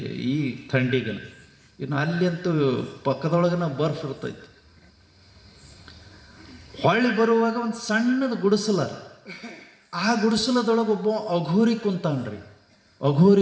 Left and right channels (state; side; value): identical; both; correlation 1.00